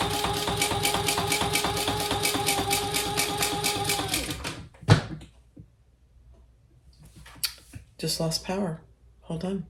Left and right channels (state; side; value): identical; both; correlation 1.00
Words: Just lost power. Hold on.